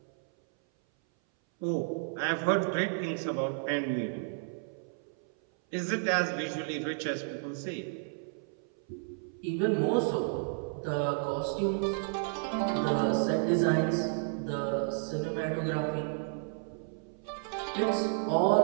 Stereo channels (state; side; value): silent; left; 57 dB below the other